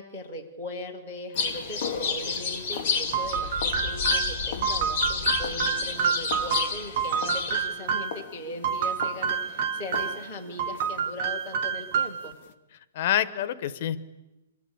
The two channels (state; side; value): inverted; both; correlation -0.31